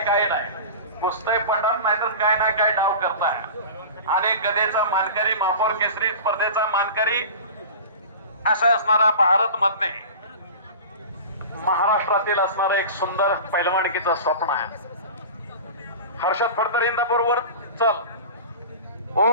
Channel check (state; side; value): inverted; both; correlation -0.35